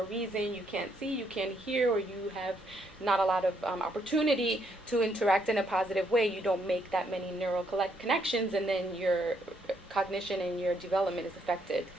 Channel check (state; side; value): normal; both; correlation 0.73